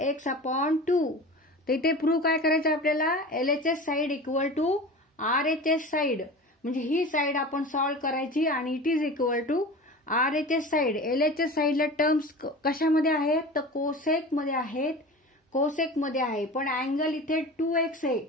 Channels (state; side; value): normal; both; correlation 0.34